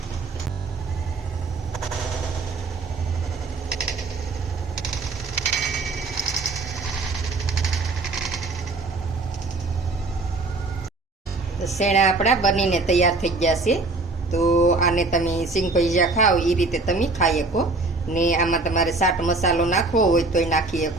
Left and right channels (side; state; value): left; quieter; 3.4 dB